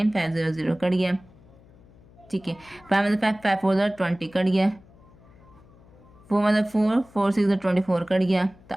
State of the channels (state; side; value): noise; left; hum, 25 dB below the sound